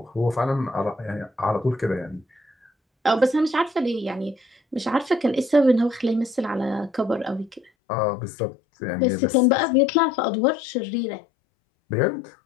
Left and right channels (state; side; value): drops out; right; at 7.7 s